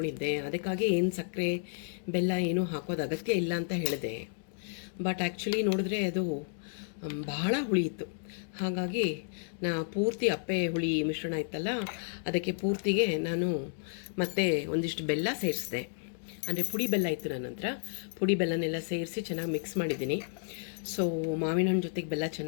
ಅದಕ್ಕಾಗಿ ಏನು ಸಕ್ಕರೆ ಬೆಲ್ಲ ಏನೂ ಹಾಕೋದು ಅಗತ್ಯ ಇಲ್ಲ ಅಂತ ಹೇಳಿದೆ. ಬಟ್ ಆ್ಯಕ್ಚುಲಿ ನೋಡಿದ್ರೆ ಅದು ಬಹಳ ಹುಳಿ ಇತ್ತು. ಹಾಗಾಗಿ ಪೂರ್ತಿ ಅಪ್ಪೆ ಹುಳಿ ಮಿಶ್ರಣ ಇತ್ತಲ್ಲ, ಅದಕ್ಕೆ ಪೂರ್ತಿಗೆ ನಾನು ಮತ್ತೆ ಒಂದಿಷ್ಟು ಬೆಲ್ಲ ಸೇರಿಸಿದೆ. ಅಂದರೆ ಪುಡಿ ಬೆಲ್ಲ ಇತ್ತು ನನ್ನ ಹತ್ರ. ಪುಡಿ ಬೆಲ್ಲನೆಲ್ಲ ಸೇರಿಸಿ ಚೆನ್ನಾಗಿ ಮಿಕ್ಸ್ ಮಾಡಿದ್ದೀನಿ. ಸೊ ಮಾವಿನ ಹಣ್ಣು ಜೊತೆಗೆ ಬೆಲ್ಲ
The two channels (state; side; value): silent; right; digital silence